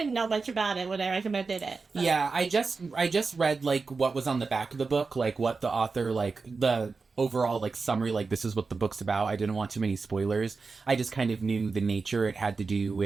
know much about it when I recommended it. So. Yeah, I just read, what was on the back of the book, what the author, the overall summary, this is what the book's about. I didn't want too many spoilers. I just kind of knew the nature. It had to do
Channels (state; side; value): quieter; left; 4.4 dB